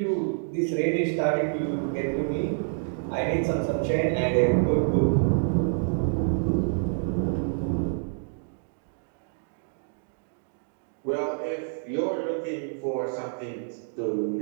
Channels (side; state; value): left; silent; digital silence